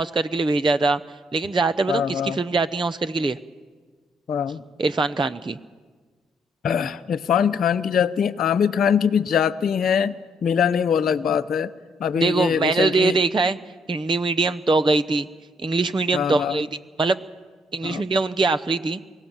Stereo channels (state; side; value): normal; both; correlation 0.69